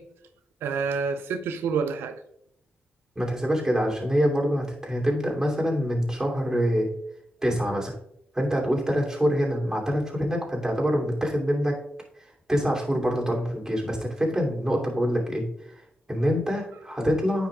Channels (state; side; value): normal; both; correlation 0.89